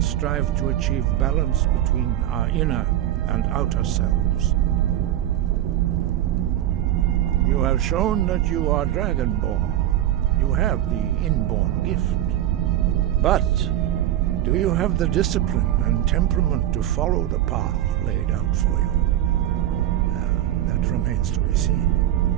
strive to achieve balance between our inner and outer selves. You have shown that you are Dragonborn. You have the inborn gift. But do you have the discipline and temperament to follow the path laid out for you? That remains to be seen.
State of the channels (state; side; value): quieter; left; 12.5 dB